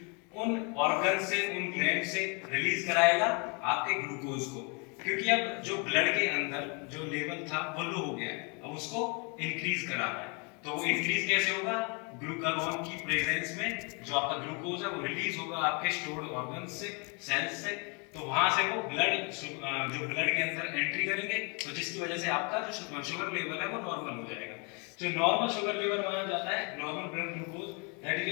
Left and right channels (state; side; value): quieter; right; 33.5 dB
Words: उन ऑर्गन से, उन ग्लैंड से रिलीज कराएगा आपके ग्लूकोज को। क्योंकि अब जो ब्लड के अंदर जो लेवल था वो लो हो गया है, अब उसको इंक्रीज कराना है। तो वो इंक्रीज कैसे होगा, ग्लूकागोन की प्रेजेंस में जो आपका ग्लूकोज है वो रिलीज होगा आपके स्टोर्ड ऑर्गन से, सेल्स से। तो वहां से वो ब्लड जो ब्लड के अंदर एंट्री करेंगे, तो जिसकी वजह से आपका जो शुगर लेवल है वो नॉर्मल हो जाएगा। जो नॉर्मल शुगर लेवल माना जाता है, normal blood glucose, that is